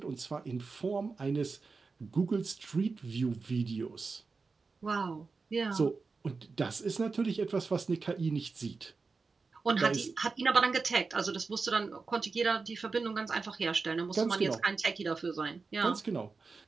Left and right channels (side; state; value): left; quieter; 4.4 dB